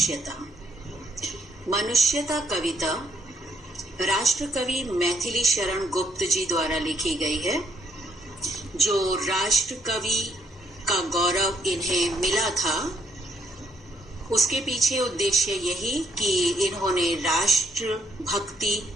मनुष्यता कविता राष्ट्रकवि मैथिली शरण गुप्त जी द्वारा लिखी गई है। जो राष्ट्रकवि का गौरव इन्हें मिला था उसके पीछे उद्देश्य यही कि इन्होंने राष्ट्र भक्ति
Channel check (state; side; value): normal; both; correlation 0.71